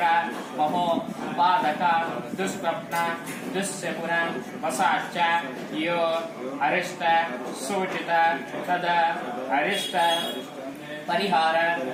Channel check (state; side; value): identical; both; correlation 1.00